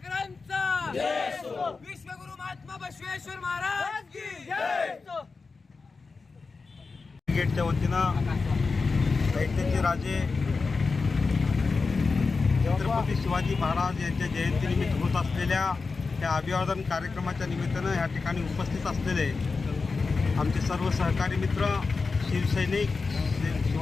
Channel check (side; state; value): right; quieter; 4.3 dB